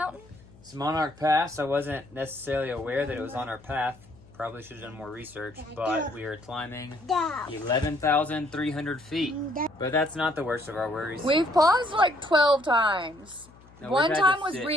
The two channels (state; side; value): noise; left; hum, 24 dB below the sound